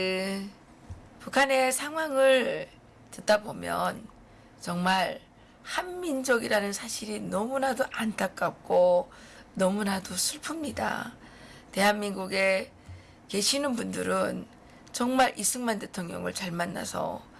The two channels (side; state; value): both; identical; correlation 1.00